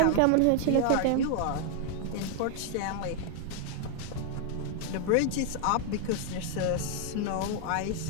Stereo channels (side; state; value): both; different; correlation 0.00